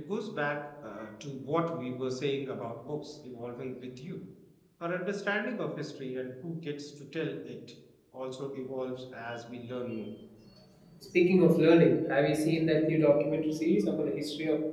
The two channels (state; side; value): identical; both; correlation 1.00